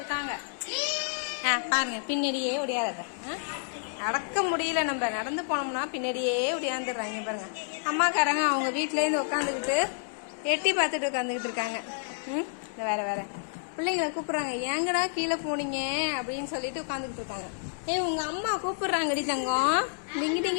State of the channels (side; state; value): right; silent; digital silence